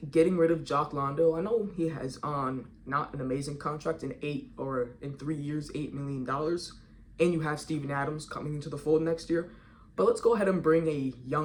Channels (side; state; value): both; identical; correlation 1.00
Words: getting rid of Jock Landale, I know he has on not an amazing contract in 3 years, $8 million. And you have Steven Adams coming into the fold next year. But let's go ahead and bring a